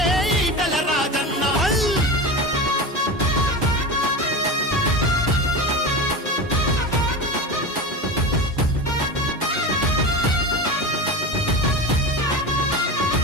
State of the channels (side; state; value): both; normal; correlation 0.25